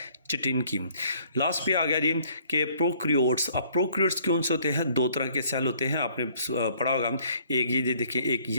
चिटिन की। लास्ट पे आ गया जी कि प्रोक्रियोट्स। अब प्रोक्रियोट्स कौन से होते हैं? दो तरह के सेल होते हैं, आपने पढ़ा होगा। एक ये देखिए, एक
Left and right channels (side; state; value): both; inverted; correlation -0.60